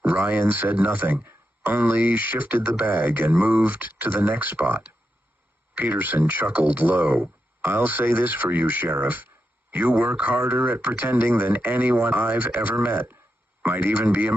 Ryan said nothing, only shifted the bag and moved to the next spot. Peterson chuckled low. I'll say this for you, Sheriff. You work harder at pretending than anyone I've ever met. Might even be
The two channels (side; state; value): both; normal; correlation 0.87